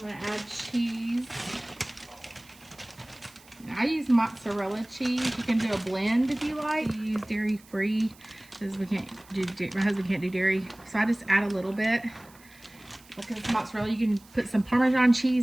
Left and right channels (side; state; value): right; noise; hiss, 25 dB below the sound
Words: I'm gonna add cheese. I use mozzarella cheese. You can do a blend if you like. You use dairy free, because my husband can't do dairy. So I just add a little bit. Because mozzarella, you can put some Parmesan